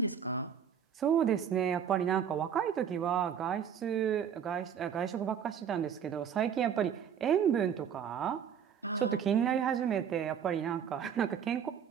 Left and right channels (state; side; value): quieter; left; 8.2 dB